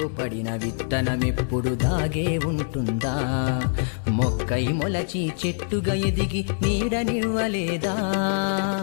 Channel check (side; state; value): right; silent; digital silence